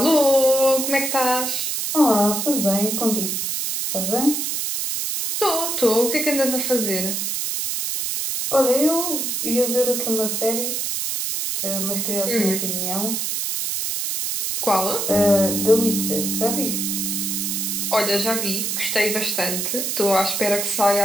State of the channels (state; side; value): noise; right; hiss, 1 dB below the sound